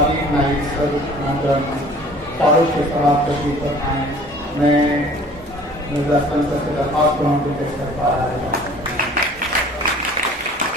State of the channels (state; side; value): normal; both; correlation 0.49